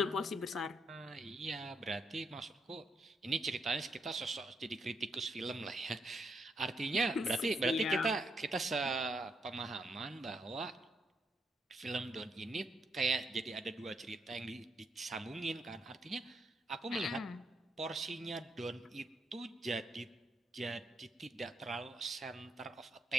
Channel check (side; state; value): both; normal; correlation 0.78